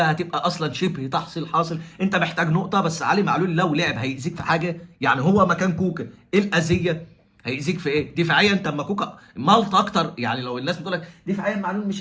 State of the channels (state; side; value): identical; both; correlation 1.00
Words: هتبقى اصلا شبه تحصيل حاصل، انت محتاج نقطه بس. علي معلول لو لعب هيأذيك في حاجه؟ يعني هو مكان كوكا ايه الاذيه؟ هيأذيك في ايه؟ دفاعيا انت اما كوكا مالط اكتر. يعني لو الناس بتقول لك دفاعيا معلول